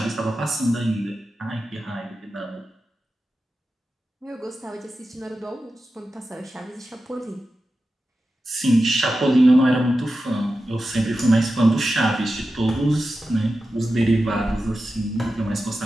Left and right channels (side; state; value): both; normal; correlation 0.92